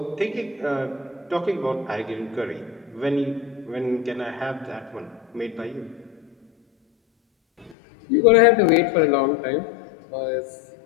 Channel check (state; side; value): drops out; right; at 7.8 s